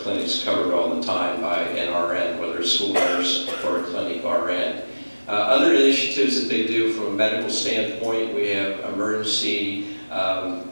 covered all the time by an RN, whether a school nurse or a clinic RN. Other initiatives that they do from a medical standpoint, we have emergency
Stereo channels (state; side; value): inverted; both; correlation -1.00